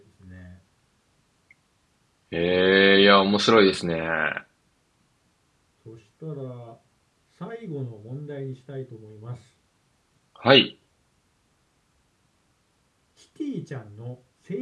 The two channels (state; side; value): identical; both; correlation 1.00